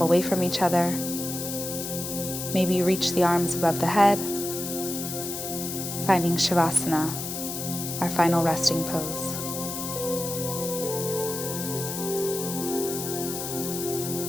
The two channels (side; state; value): left; noise; hiss, 6 dB below the sound